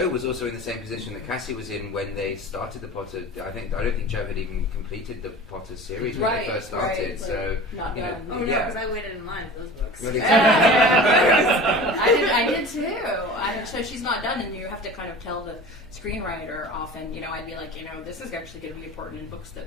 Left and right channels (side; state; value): left; noise; hum, 30 dB below the sound